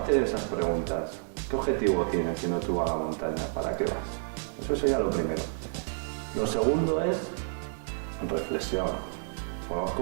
esas preguntas. ¿Qué objetivo tienes yendo tú a la montaña? ¿Para qué vas? Eso sería lo primero. Lo segundo es reflexión.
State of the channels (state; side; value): silent; left; 58 dB below the other